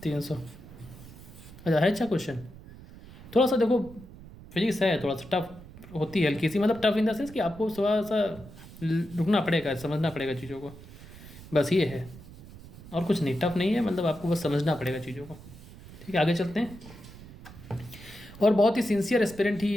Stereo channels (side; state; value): right; noise; rumble, 17 dB below the sound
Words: 300। अच्छा है, अच्छा क्वेश्चन, थोड़ा सा देखो फिजिक्स है, थोड़ा सा टफ होती है, हल्की सी, मतलब टफ इन द सेंस कि आपको थोड़ा सा रुकना पड़ेगा, समझना पड़ेगा चीज़ों को, बस ये है, और कुछ नहीं, टफ नहीं है, मतलब आपको बस समझना पड़ेगा चीज़ों को, ठीक है। आगे चलते हैं, और बहुत ही सिंसियर एस्पिरेंट